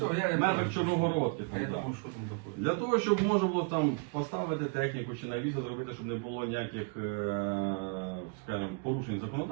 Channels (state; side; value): quieter; left; 34.1 dB